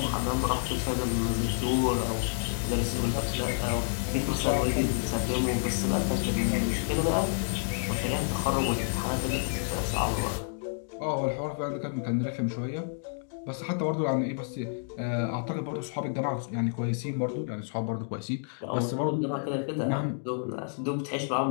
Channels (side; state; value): right; silent; digital silence